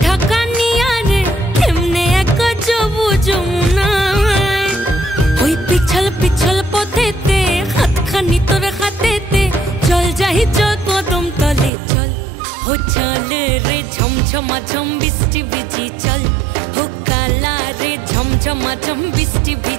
ঢাকা নিয়া রে এমনে এক যাবো যমুনায়, ওই পিছল পিছল পথেতে হাতখানি তোর হাতেতে, চল যাই চল কদম তলে চল, হো চল রে ঝমঝমা ঝম বৃষ্টি ভিজি চল, হো কালা রে ঝমঝমা ঝম বৃষ্টি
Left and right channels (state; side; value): drops out; left; at 11.7 s